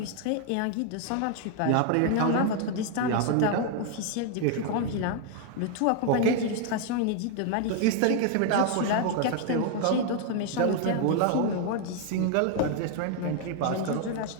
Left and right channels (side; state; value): both; different; correlation 0.00